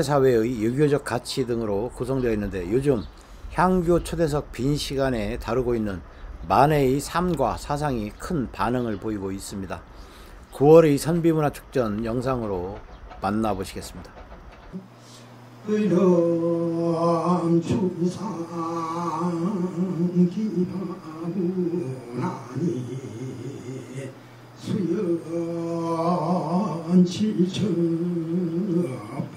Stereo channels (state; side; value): identical; both; correlation 1.00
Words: 유교적 가치 등으로 구성되어 있는데, 요즘 향교 초대석 빈 시간에 다루고 있는 만해의 삶과 사상이 큰 반응을 보이고 있습니다. 9월의 선비문화축전 영상으로 만나보시겠습니다. 의람 추상 기바구나니 수연 칠처